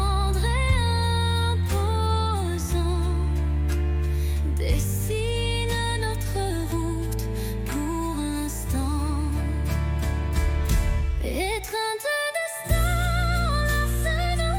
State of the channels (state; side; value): identical; both; correlation 1.00